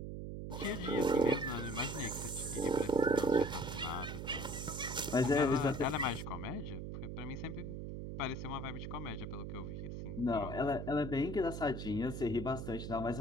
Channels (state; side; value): noise; right; hum, 6 dB below the sound